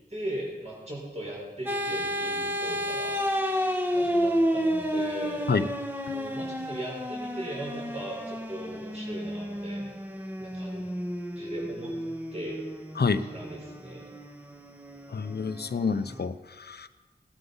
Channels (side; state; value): both; normal; correlation 0.69